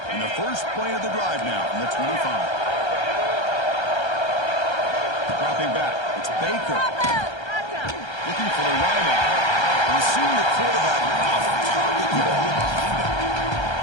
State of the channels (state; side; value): late; right; 1.3 ms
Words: And the first play of the drive now from the 25. Dropping back. It's Baker. Looking for the wideout. And seeing the quarterback off target behind him.